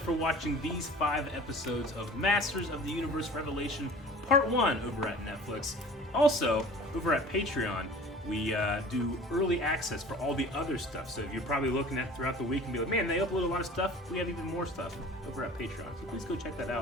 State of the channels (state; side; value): normal; both; correlation 0.44